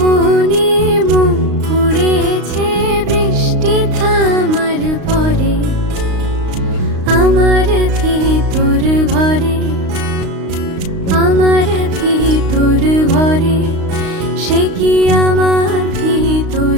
মন পুড়েছে বৃষ্টি থামার পরে আমার ভিতর ভরে আমার ভিতর ভরে সে কি আমার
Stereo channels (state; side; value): late; left; 35 ms